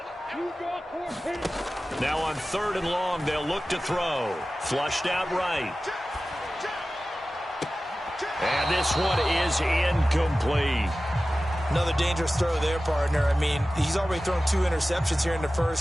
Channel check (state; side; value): normal; both; correlation 0.95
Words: Now on 3rd and long, they'll look to throw. Flushed out right. And this one is incomplete. Another dangerous throw there, partner. I mean, he's already thrown 2 interceptions here in the